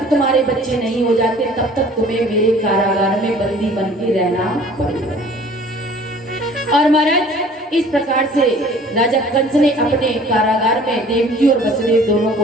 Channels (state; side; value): normal; both; correlation 0.51